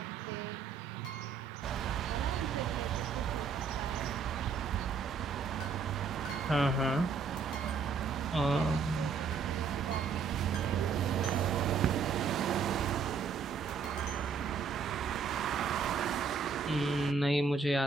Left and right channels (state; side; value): quieter; left; 5.4 dB